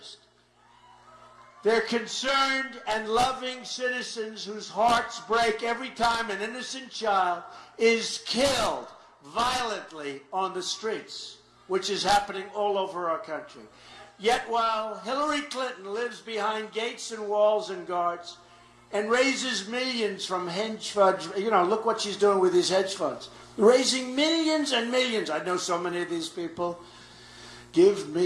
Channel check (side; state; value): both; identical; correlation 1.00